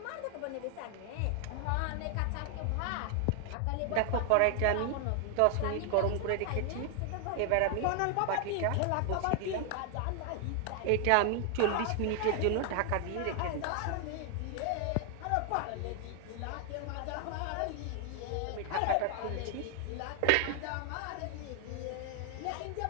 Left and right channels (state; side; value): different; both; correlation 0.00